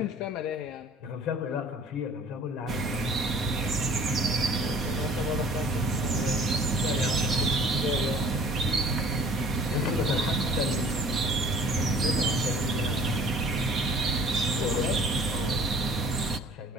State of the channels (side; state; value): both; normal; correlation 0.50